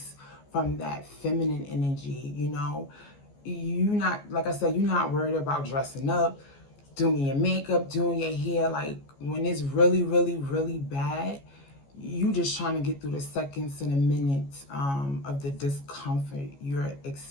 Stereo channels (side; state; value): right; late; 14 ms